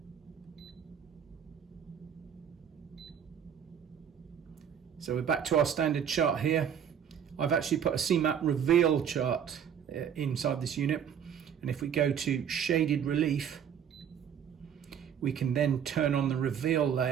So we're back to our standard chart here. I've actually put a CMAP reveal chart inside this unit, and if we go to shaded relief, we can then turn on the reveal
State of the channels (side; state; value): left; quieter; 8.5 dB